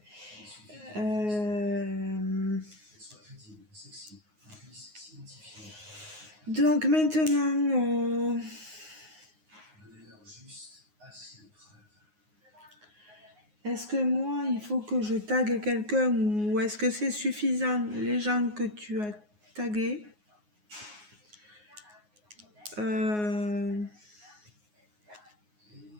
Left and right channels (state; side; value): late; left; 9.5 ms